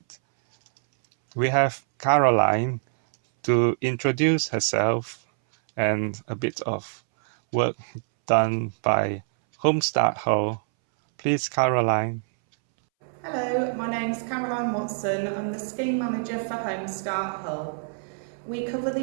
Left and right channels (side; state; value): left; silent; 62 dB below the other